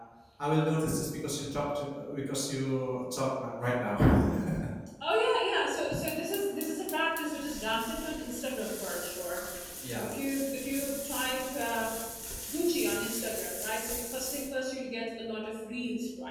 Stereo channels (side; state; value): both; identical; correlation 1.00